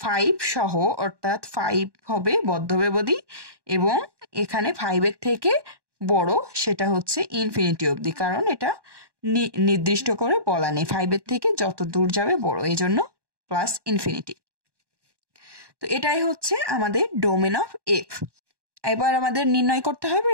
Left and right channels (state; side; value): late; left; 1.1 ms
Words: 5 সহ, অর্থাৎ 5 হবে বদ্ধব্যবধি, এবং এখানে 5 এর থেকে বড় সেটা হচ্ছে ইনফিনিটি অবধি, কারণ এটা নির্দিষ্ট করে বলা নেই 5 এর থেকে যত দূর যাবে বড়, এই জন্য প্লাস ইনফিনিটি। তো এটাই হচ্ছে আমাদের ডোমেন অফ এফ। এবার আমাদের নির্ণয় করতে হবে